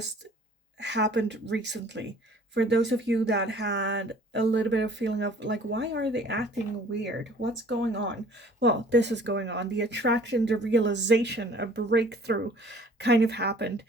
happened recently. For those of you that had a little bit of feeling of like, why are they acting weird? What's going on? Well, this is going on. The attraction, the realization, a breakthrough kind of happened.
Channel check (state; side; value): normal; both; correlation 0.52